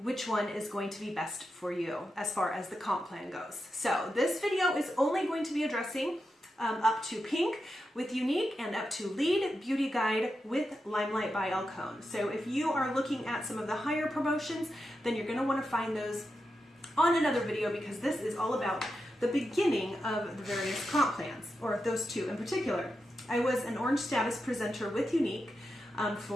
one is going to be best for you as far as the comp plan goes. So this video is only going to be addressing up to pink with Younique and up to lead beauty guide with LimeLight by Alcone. So if you are looking at some of the higher promotions, then you're going to want to find those on another video, because this is all about the beginning of the various comp plans, or those two in particular. I was an orange status presenter with Younique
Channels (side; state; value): both; normal; correlation 0.88